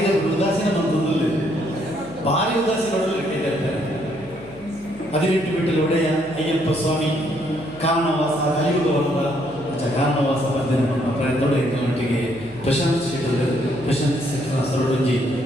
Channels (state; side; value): noise; right; hum, 22 dB below the sound